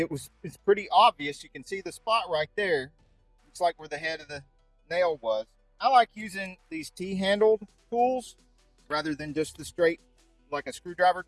pretty obvious. You can see the spot right there. Looks like where the head of the nail was. I like using these T-handled tools rather than just the straight, like a screwdriver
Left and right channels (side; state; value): both; identical; correlation 1.00